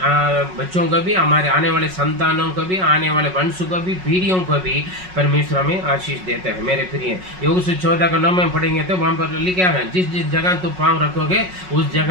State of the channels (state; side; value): late; left; 5.4 ms